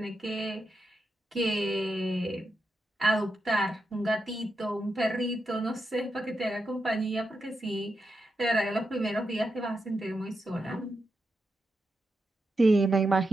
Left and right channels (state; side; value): normal; both; correlation 0.86